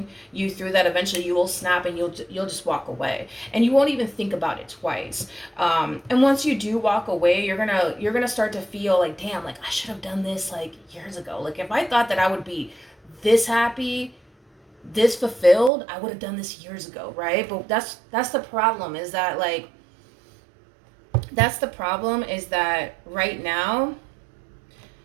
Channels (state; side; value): drops out; left; at 15.7 s